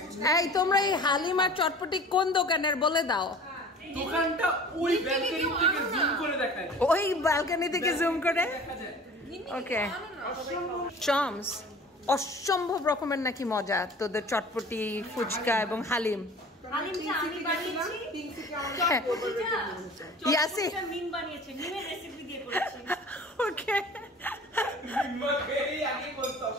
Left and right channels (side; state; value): both; normal; correlation 0.43